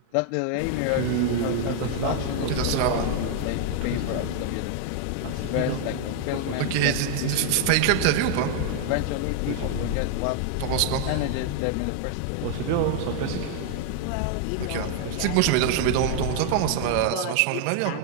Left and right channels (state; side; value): different; both; correlation 0.00